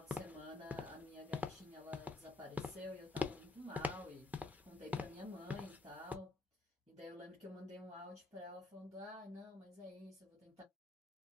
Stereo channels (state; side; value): quieter; right; 3.0 dB